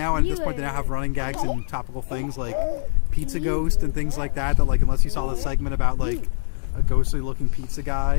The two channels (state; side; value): silent; right; digital silence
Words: And at this point, they now have running gags and topical things like Pizza Ghost and things like that. That, like, unless you saw the segment about, like, a ghostly-looking pizza